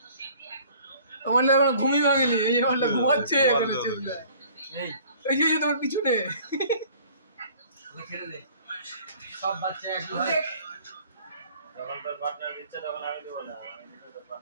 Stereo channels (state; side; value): inverted; both; correlation -0.52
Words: তোমার এখন ঘুমি ভাঙেনি এই যে বলটা ঘুমাচ্ছে এখানে চেপলে এই যে তোমার পিছনে খেলে দে সব বাচ্চা একই হয় তখন তোর পার্টনার দিচ্ছে তখন আমি দেবো না, আমি তো তোর